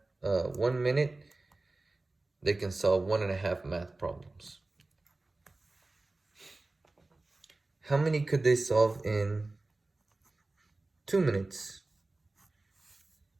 minute, they can solve 1 1/2 math problems. How many could they solve in 2 minutes?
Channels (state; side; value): quieter; left; 3.1 dB